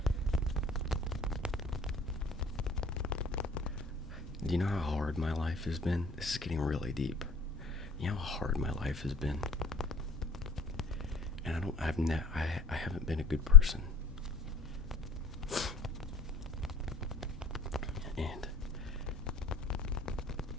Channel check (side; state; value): right; quieter; 4.2 dB